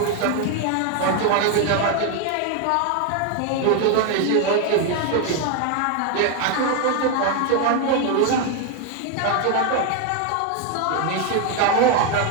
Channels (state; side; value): different; both; correlation 0.01